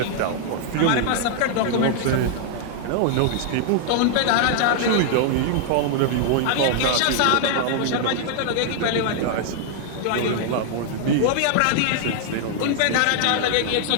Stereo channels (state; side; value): different; both; correlation 0.00